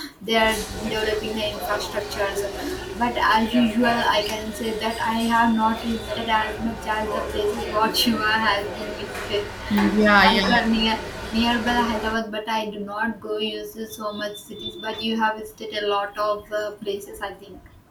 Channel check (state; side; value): identical; both; correlation 1.00